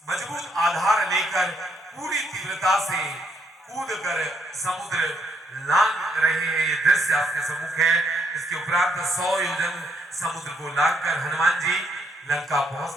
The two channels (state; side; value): normal; both; correlation 0.72